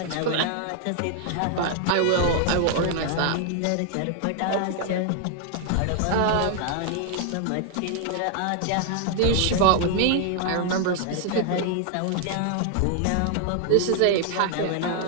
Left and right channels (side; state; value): both; different; correlation 0.00